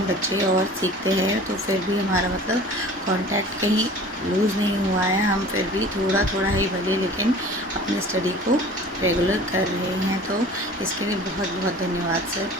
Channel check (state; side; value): normal; both; correlation 0.43